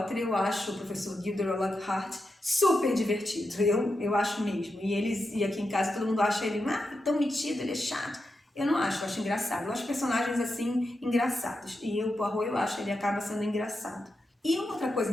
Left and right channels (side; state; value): both; normal; correlation 0.88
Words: eu acho o professor Gilderoy Lockhart super divertido, eu acho mesmo. E aqui em casa todo mundo acha ele tão metido, ele é chato. Eu não acho, eu acho engraçado. Eu acho personagens assim engraçados. E o Poirot, eu acho, ele acaba sendo engraçado. E uma outra coisa